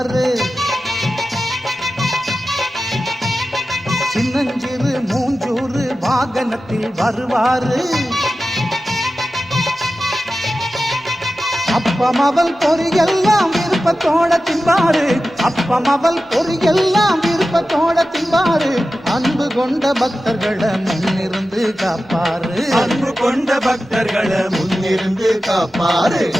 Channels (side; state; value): both; normal; correlation 0.94